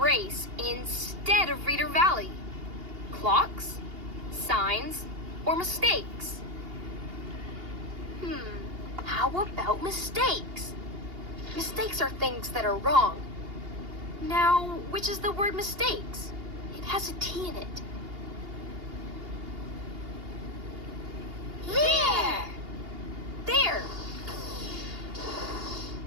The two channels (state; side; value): late; left; 2.8 ms